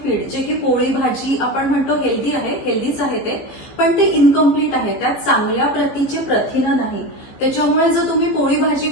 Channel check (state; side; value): late; right; 15 ms